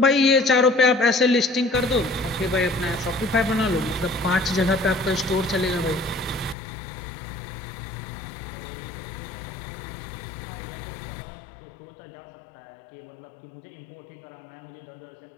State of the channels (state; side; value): drops out; right; at 6.6 s